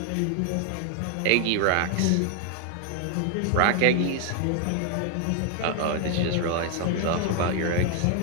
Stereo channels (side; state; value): both; different; correlation 0.00